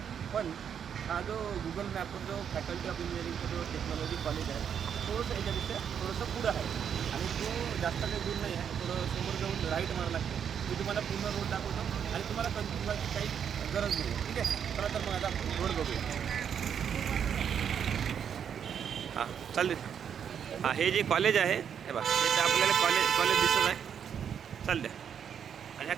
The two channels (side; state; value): left; quieter; 8.0 dB